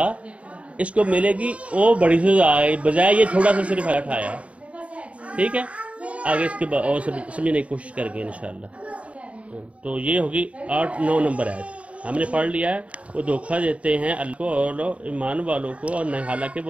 اس کو ملے گی، وہ بڑی سزا ہے، بجائے یہ تھوڑا سا صرف اٹھایا ہے۔ ٹھیک ہے، آگے اس کے بعد اور سمجھنے کی کوشش کریں گے انشاءاللہ۔ تو یہ ہوگی 8-9 نمبر آیت ہم نے پڑھ لیا ہے۔ وہ دھوکہ دیتے ہیں اللہ کو اور ایمان والوں کو، اور حالانکہ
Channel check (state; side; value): late; left; 0.064 ms